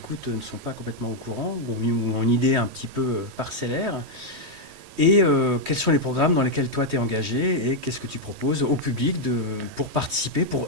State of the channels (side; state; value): left; late; 3.1 ms